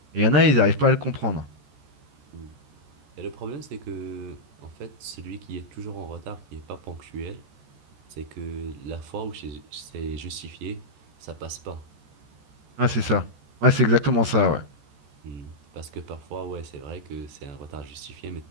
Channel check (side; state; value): left; late; 14 ms